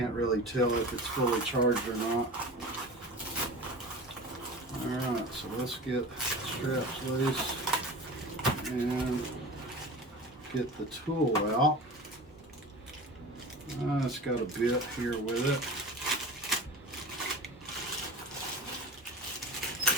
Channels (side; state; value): both; normal; correlation 0.34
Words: really tell if it's fully charged or not. Alright, so let's get the straps loose and get the tool out. It's got a bit here with it.